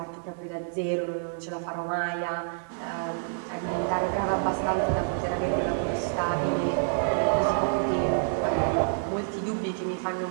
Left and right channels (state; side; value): silent; left; 59 dB below the other